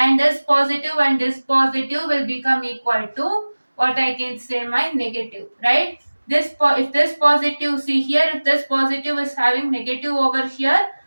this positive will become equal to what I can say, my negative, right? If this positive, see here, if this positive is having negative over here,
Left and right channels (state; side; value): inverted; both; correlation -1.00